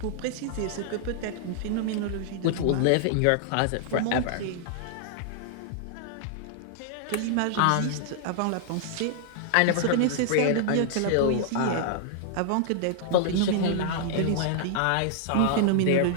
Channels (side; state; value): both; different; correlation -0.01